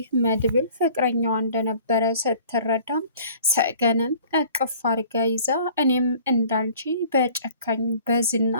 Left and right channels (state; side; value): inverted; both; correlation -0.50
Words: መድብል ፍቅረኛዋ እንደነበረ ስትረዳም ሰገንን እቅፍ አድርጋ ይዛ እኔም እንዳንቺ በጨካኝ በዝና